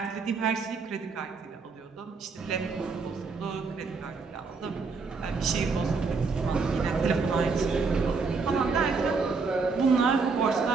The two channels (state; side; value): quieter; left; 4.6 dB